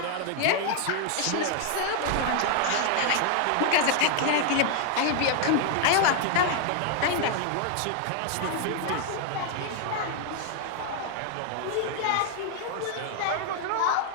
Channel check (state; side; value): different; both; correlation 0.00